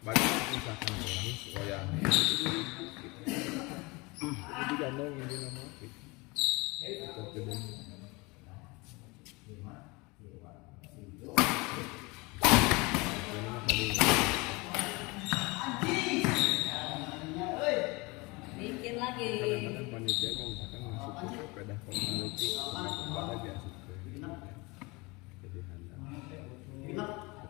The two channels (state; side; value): quieter; right; 25.6 dB